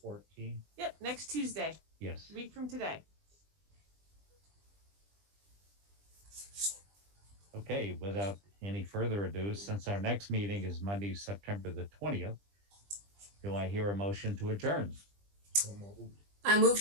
Yep, next Tuesday, yes. a week from today. Okay, without any further ado, since our next meeting is Monday, September the 20th, do I hear a motion to adjourn? So moved. I move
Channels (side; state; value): left; late; 20 ms